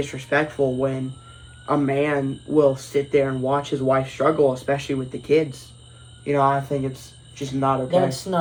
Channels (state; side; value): identical; both; correlation 1.00